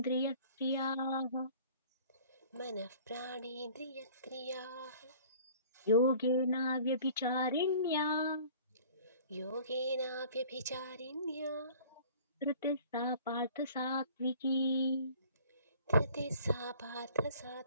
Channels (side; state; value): both; inverted; correlation -0.50